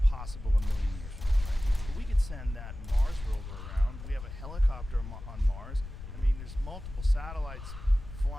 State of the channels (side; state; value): left; noise; rumble, 11 dB below the sound